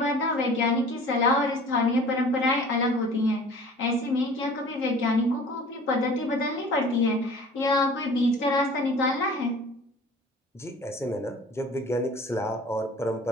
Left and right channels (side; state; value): both; normal; correlation 0.45